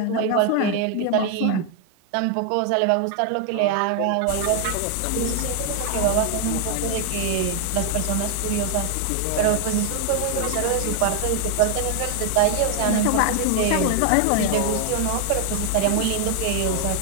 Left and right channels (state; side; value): different; both; correlation 0.00